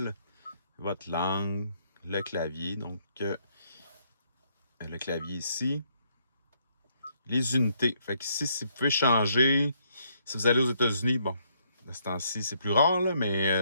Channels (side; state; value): both; inverted; correlation -0.71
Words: votre langue, le clavier. Donc, le clavier ici. Les unités. Fait que ici, si vous pouvez changer, si vous allez aux États-Unis, bon, de ce temps-ci, c'est plus rare, là,